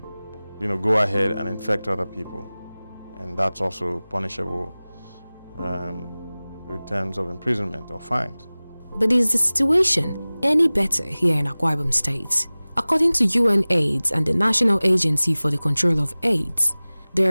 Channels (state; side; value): inverted; both; correlation -0.99